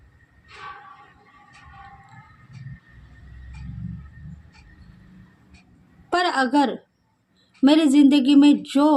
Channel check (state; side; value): identical; both; correlation 1.00